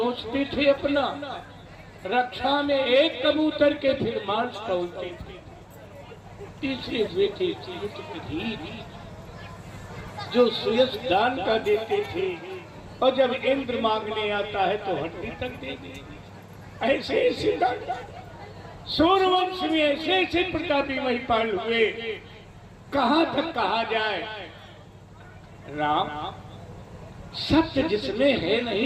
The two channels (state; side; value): identical; both; correlation 1.00